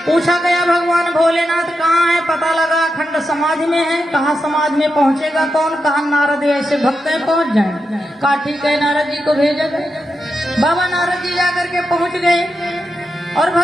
पूछा गया, भगवान भोलेनाथ कहाँ है? पता लगा अखंड समाधि में है। कहा समाधि में पहुंचेगा कौन? कहा नारद ऐसे भक्त है पहुंच जाए। कहा ठीक है, नारद जी को भेजा गया। बाबा नारद जी जाकर के पहुंच गए और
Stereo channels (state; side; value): normal; both; correlation 0.87